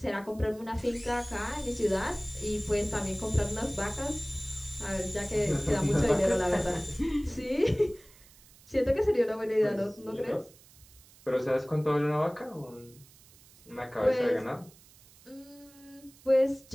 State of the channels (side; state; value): right; noise; hiss, 25 dB below the sound